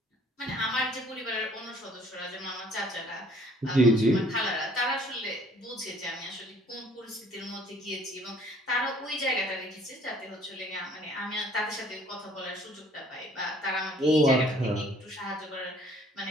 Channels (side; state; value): both; normal; correlation 0.58